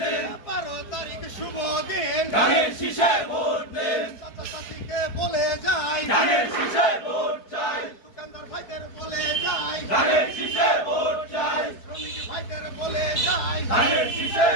12 তারিখ শুভ দিন, ধানের শীষে ভোট দিন, চাচা চাচিকে বলে যাই, ধানের শীষে ভোট চাই, দোকানদার ভাইদের বলে যাই, ধানের শীষে ভোট চাই, শ্রমিক ভাইদের বলে যাই, ধানের শীষে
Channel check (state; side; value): late; right; 4.6 ms